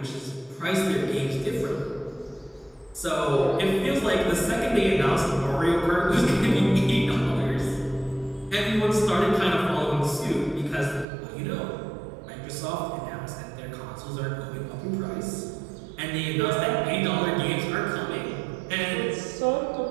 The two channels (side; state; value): left; drops out; at 11.1 s